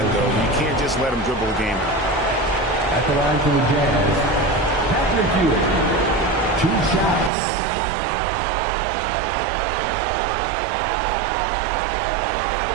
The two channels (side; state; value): left; drops out; at 7.3 s